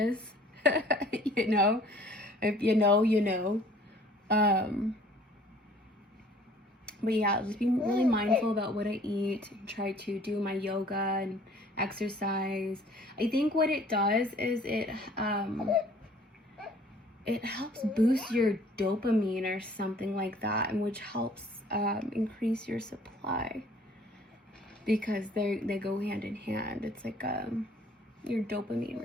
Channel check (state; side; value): normal; both; correlation 0.54